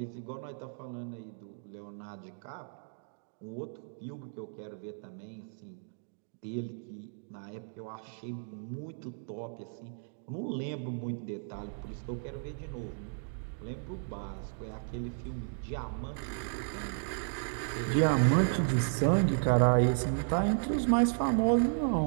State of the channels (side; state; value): left; silent; digital silence